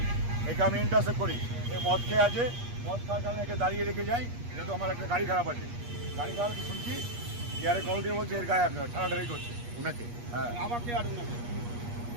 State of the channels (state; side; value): late; left; 8.4 ms